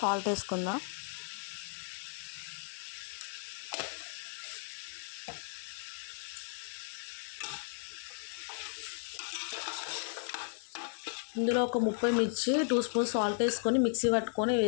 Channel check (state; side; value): silent; right; digital silence